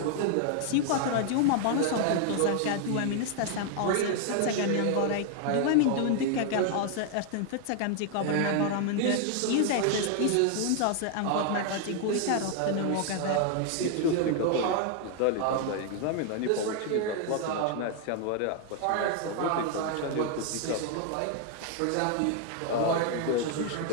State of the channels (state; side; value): different; both; correlation 0.00